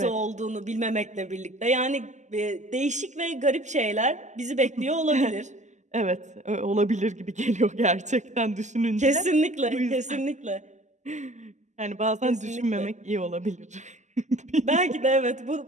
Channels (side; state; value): left; late; 0.34 ms